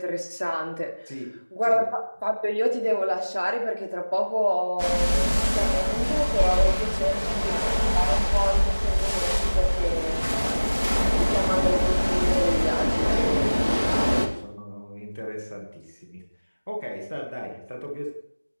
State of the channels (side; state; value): both; inverted; correlation -1.00